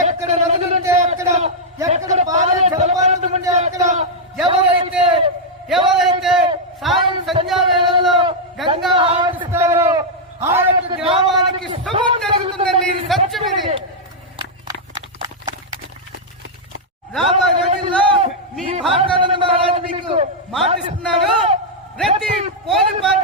ఎక్కడ నదులుంటే అక్కడ, ఎక్కడ పాలే జలపాతం ఉంటే అక్కడ ఎవరైతే సాయం సంధ్యా వేళల్లో గంగా ఆరాధిస్తారో ఆ యొక్క గ్రామానికి శుభం జరుగుతుందండి. ఇది సత్యం. ఇది రాబోయే రోజుల్లో మీ భారతానంద మహారాజు మీకు మాటిస్తున్నాడు. ప్రతి పోలి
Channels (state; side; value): normal; both; correlation -0.05